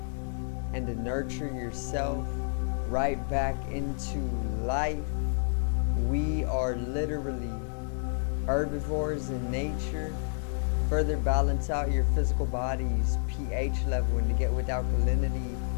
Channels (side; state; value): right; silent; 58 dB below the other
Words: and to nurture yourself right back into life. We are literally herbivores in nature. Further balance out your physical body's pH level, and to get with alkalinity,